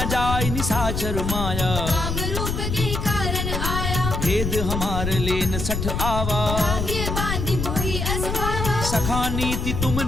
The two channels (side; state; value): left; noise; rumble, 2 dB below the sound